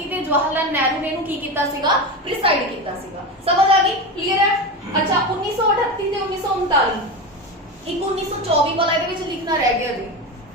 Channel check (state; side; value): normal; both; correlation 0.21